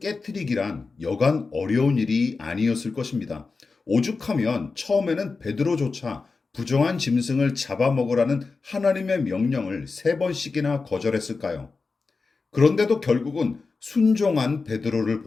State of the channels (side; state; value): right; quieter; 4.3 dB